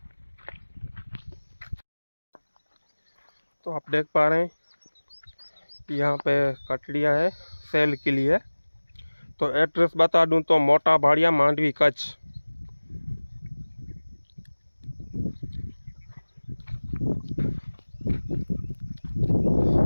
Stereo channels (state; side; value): inverted; both; correlation -1.00